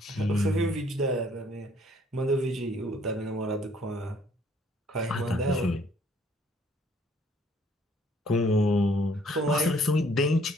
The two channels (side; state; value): both; normal; correlation 0.62